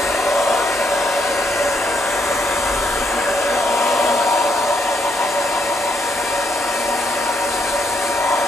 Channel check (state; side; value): normal; both; correlation 0.75